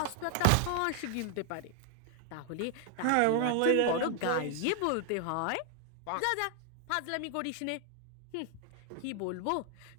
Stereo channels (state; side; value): different; both; correlation 0.00